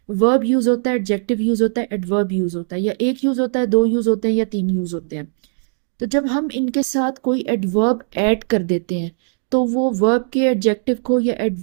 वर्ब यूज होता है, एडजेक्टिव यूज होता है, एडवर्ब यूज होता है, या एक यूज होता है, दो यूज होते हैं, या तीन यूज होते हैं। तो जब हम इनके साथ कोई एडवर्ब ऐड कर देते हैं तो वो वर्ब के एडजेक्टिव को या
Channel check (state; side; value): silent; left; digital silence